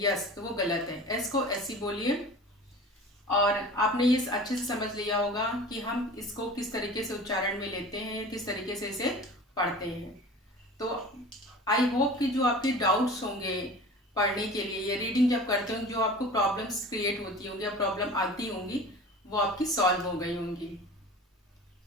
यस, तो वो गलत है। एस को ऐसी बोलिए। और आपने ये अच्छे से समझ लिया होगा कि हम इसको किस तरीके से उच्चारण में लेते हैं, किस तरीके से इसे पढ़ते हैं। तो आई होप कि जो आपके डाउट्स होंगे पढ़ने के लिए या रीडिंग जब करते होंगे, जो आपको प्रॉब्लम्स क्रिएट होती होंगी या प्रॉब्लम आती होंगी, वो आपकी सॉल्व हो गई होंगी।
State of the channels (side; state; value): both; normal; correlation 0.39